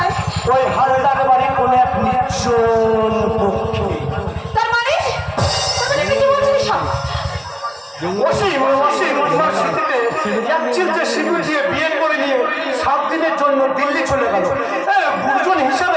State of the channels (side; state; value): both; identical; correlation 1.00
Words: ওই হালদার বাড়ি কোন এক নির্জন পক্ষে। তার মানে কি বলছিস সব? এক চিলতে সিঁদুর দিয়ে বিয়ে করে নিয়ে 7 দিনের জন্য দিল্লি চলে গেল। গুরুজন